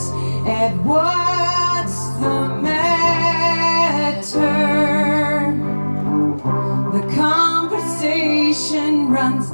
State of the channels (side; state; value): both; inverted; correlation -1.00